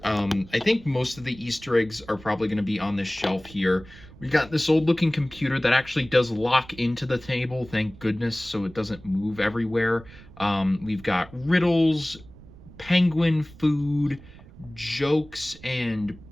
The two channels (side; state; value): right; noise; rumble, 20 dB below the sound